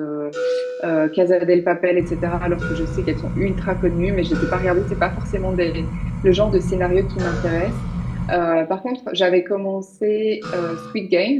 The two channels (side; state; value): both; identical; correlation 1.00